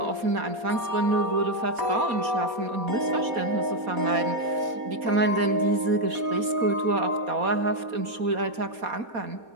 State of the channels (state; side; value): late; left; 4.2 ms